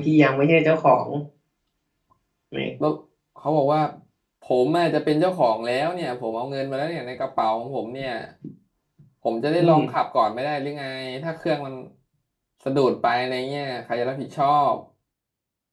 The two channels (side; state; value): both; identical; correlation 1.00